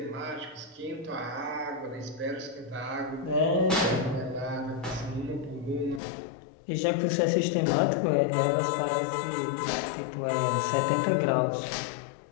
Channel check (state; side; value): drops out; right; at 6.0 s